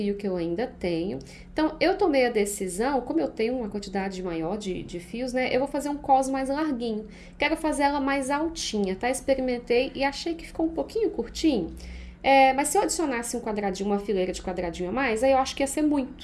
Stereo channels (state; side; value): identical; both; correlation 1.00